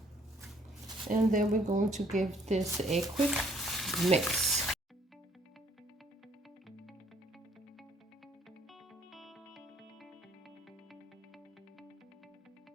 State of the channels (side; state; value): both; normal; correlation 0.62